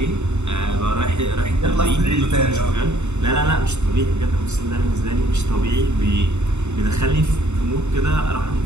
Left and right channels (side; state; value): left; late; 0.82 ms